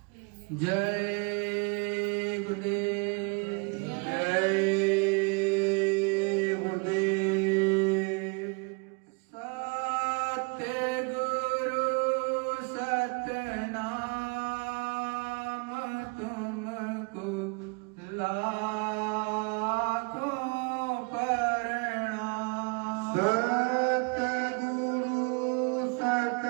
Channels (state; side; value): quieter; left; 31.6 dB